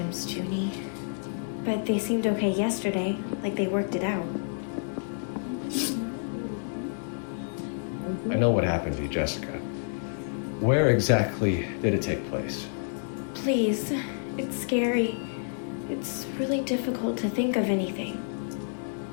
Junie. But they seemed okay yesterday, like they worked it out. I know what happened to you, Jessica. Where exactly did it take place? Please, it's scary. It's really difficult to think of anything.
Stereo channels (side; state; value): right; silent; digital silence